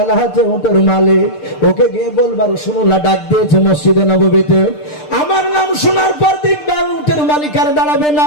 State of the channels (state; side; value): late; right; 6.7 ms